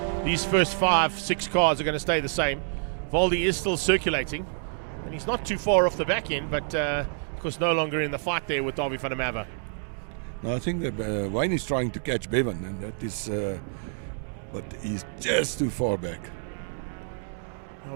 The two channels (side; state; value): left; silent; digital silence